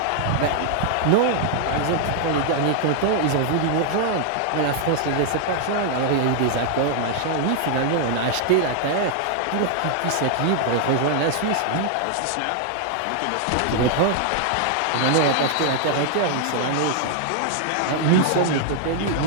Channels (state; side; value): different; both; correlation 0.00